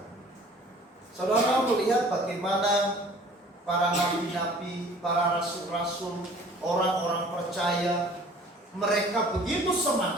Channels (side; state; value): both; normal; correlation 0.50